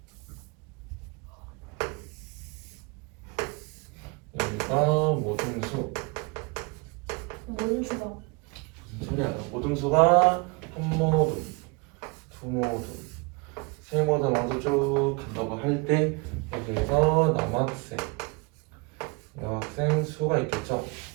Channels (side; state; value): left; quieter; 29.3 dB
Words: 여기가 모등수 모든 수가. 무슨 소리야? 모등수가 한 모등, 두 모등, 세 모등하고 쭉 간다고 할 때 여기에서 남학생, 여학생 수가 있겠죠.